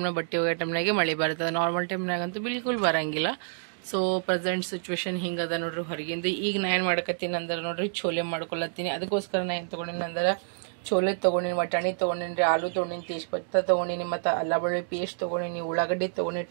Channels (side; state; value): left; silent; digital silence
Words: ಬಟ್ಟೆ ಹೋಗೋ ಟೈಮ್ನಾಗೆ ಮಳೆ ಬರ್ತದೆ. ನಾರ್ಮಲ್ ಟೈಮ್ನಾಗಂತೂ ಬಿಲ್ಕುಲ್ ಬರಂಗಿಲ್ಲ. ಸೊ ಪ್ರೆಸೆಂಟ್ ಸಿಚುವೇಶನ್ ಹಿಂಗದ ನೋಡ್ರಿ ಹೊರಗಿಂದ. ಈಗ ನಾ ಏನು ಮಾಡಕತ್ತೀನಿ ಅಂದ್ರೆ ನೋಡ್ರಿ ಛೋಲೆ ಮಾಡ್ಕೊಳತ್ತೀನಿ. ಅದಕ್ಕೋಸ್ಕರ ನಾ ಏನು ತೊಗೊಂಡಿನಿ ಅಂದ್ರೆ ಛೋಲೆ ತೊಗೊಂಡಿನಿ, ವಟಾಣಿ ತೊಗೊಂಡಿನಿ, ಆಲೂ ತೊಗೊಂಡಿನಿ, ತೇಜ್ಪತ್ತ ತೊಗೊಂಡಿನಿ, ಮತ್ತು ಅಲ್ಲ ಬೆಳ್ಳುಳ್ಳಿ ಪೇಸ್ಟ್ ತೊಗೊಂಡಿನಿ, ಉಳ್ಳಾಗಡ್ಡಿ ತೊಗೊಂಡಿನಿ,